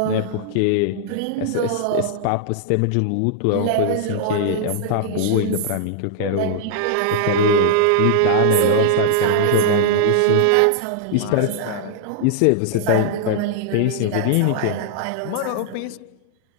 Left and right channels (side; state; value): both; different; correlation -0.01